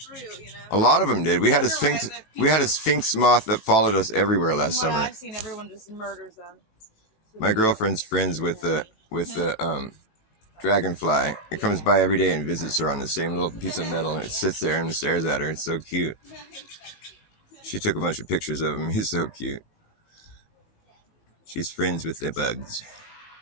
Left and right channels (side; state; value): right; late; 18 ms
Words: a lot of them did. We had a sphinx moth that followed us everywhere last summer. I've seen, everyone just murders them. My girlfriend's friends with the dragonfly. It comes by every day and visits her on the same little piece of metal, and it sits there and stares at her. It's so cute. She took a bunch of pictures of him. He's so cute. She's friends with the bugs.